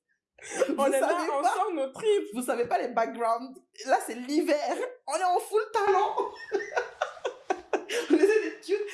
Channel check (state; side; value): identical; both; correlation 1.00